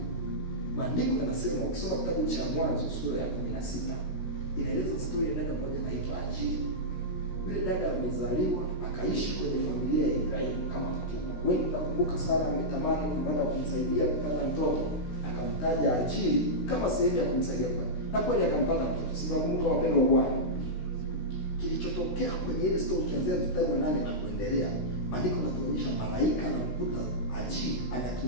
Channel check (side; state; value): right; late; 16 ms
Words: Maandiko yanasema, ukisoma kitabu cha Mwanzo sura ya 16 inaeleza story ya dada mmoja anaitwa Hajiri. Yule dada amezaliwa akaishi kwenye familia ya Ibrahimu kama mtumwa. Wewe unakumbuka Sara ametamani kupata kumsaidia kupata mtoto, akamtaja Hajiri kama sehemu ya kumsaidia kupata. Na kweli akampata mtoto. Sinakumbuka wapendwa Bwana. Kilichotokea kwenye ile story kianzia mstari wa 8 na kuendelea, maandiko yanatuonyesha malaika anamkuta Hajiri